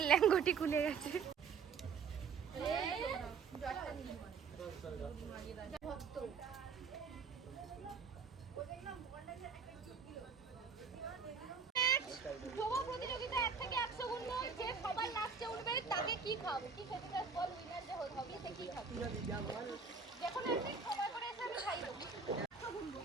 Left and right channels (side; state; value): left; quieter; 5.5 dB